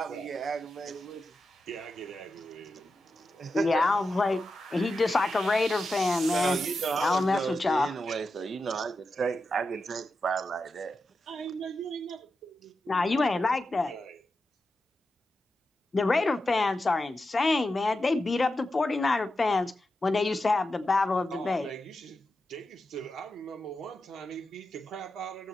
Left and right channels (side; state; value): both; normal; correlation 0.89